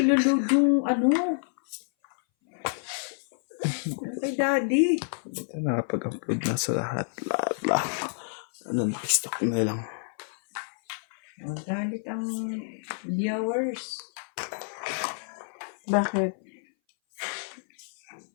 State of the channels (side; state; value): right; silent; 59 dB below the other